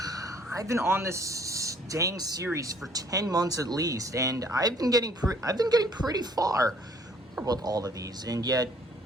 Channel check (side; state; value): both; normal; correlation 0.59